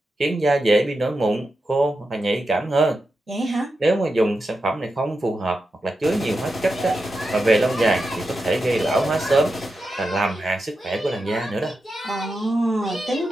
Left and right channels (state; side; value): normal; both; correlation 0.89